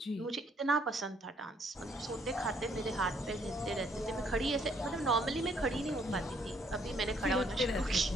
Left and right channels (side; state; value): both; normal; correlation 0.67